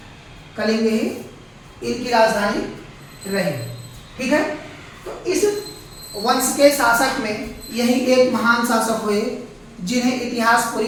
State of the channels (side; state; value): both; identical; correlation 1.00